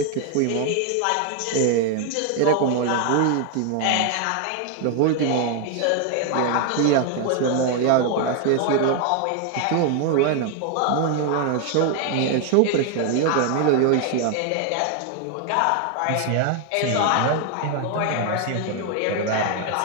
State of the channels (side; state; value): both; different; correlation 0.01